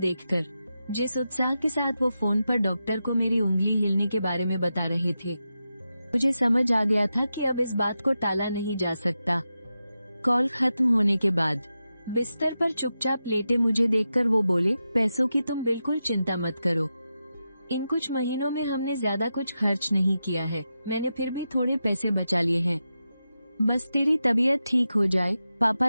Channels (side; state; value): both; inverted; correlation -0.90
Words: जिस उत्साह के साथ वो फोन पर डॉक्टर को मेरी उंगली हिलने के बारे में बता रहे थे, मुझे समझ आ गया था कि अब इस बात को टाला नहीं जा सकता। कॉल खत्म होने के बाद बिस्तर पर चुपचाप लेटे मुझे देखकर वो बोले, पैसों की तुम बिल्कुल चिंता मत करो। इन कुछ महीनों में हमने ज्यादा कुछ खर्च नहीं किया है। मैंने फिर भी थोड़े पैसे बचा लिए हैं। बस तेरी तबीयत ठीक हो जाए, पापा